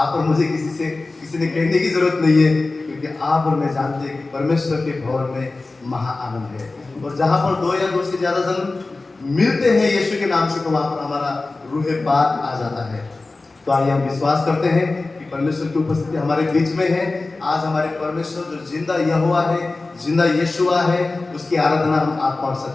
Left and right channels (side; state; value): right; quieter; 3.4 dB